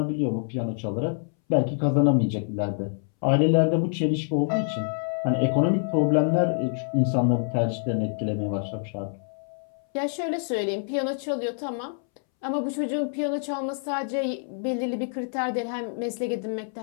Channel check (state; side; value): silent; right; 61 dB below the other